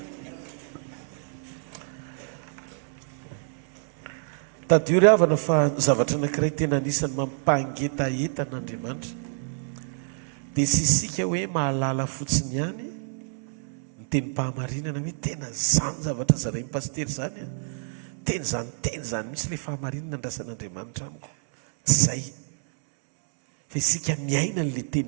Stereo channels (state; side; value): silent; left; digital silence